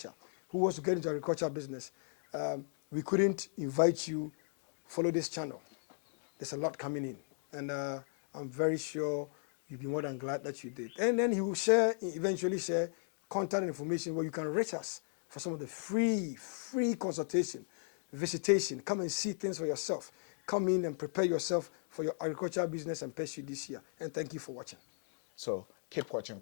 who wants to get into agriculture business, we couldn't invite you follow this channel. There's a lot coming in, and I'm very sure you'll be more than glad that you did. And then he will eventually share contact information where you can reach us for some of the free consultation, visitation. Come and see things for yourself. Come in and prepare yourself for your agricultural business and pursue this year. And thank you for watching. So keep watching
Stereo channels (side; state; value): right; silent; digital silence